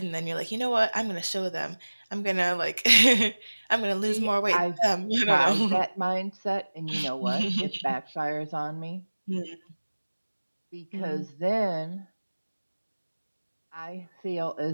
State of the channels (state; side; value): inverted; both; correlation -1.00